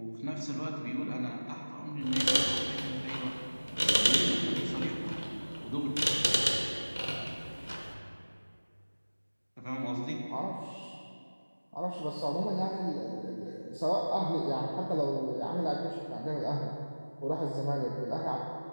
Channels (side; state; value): both; inverted; correlation -1.00